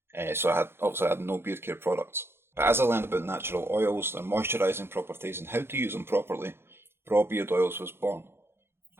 So I had no beard care products. But as I learned about natural oils, their moisturising properties and how to use them properly, BrawBeard oils was born.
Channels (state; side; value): late; left; 0.11 ms